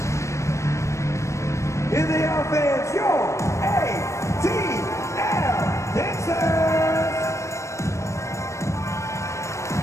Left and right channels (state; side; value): late; right; 0.14 ms